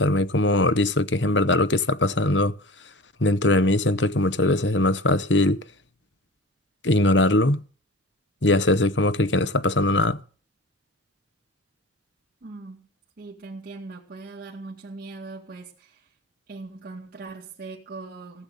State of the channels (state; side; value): normal; both; correlation 0.37